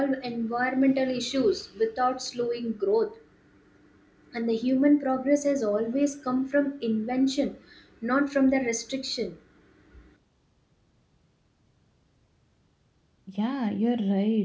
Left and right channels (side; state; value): both; identical; correlation 1.00